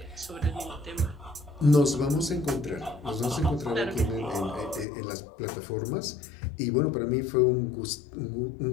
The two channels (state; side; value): drops out; right; at 4.9 s